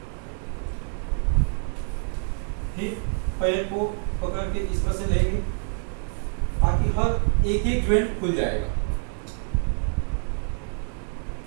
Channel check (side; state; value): left; silent; 58 dB below the other